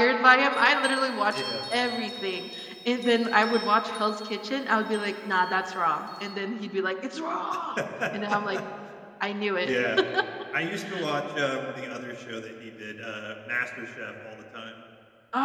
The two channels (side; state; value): both; identical; correlation 1.00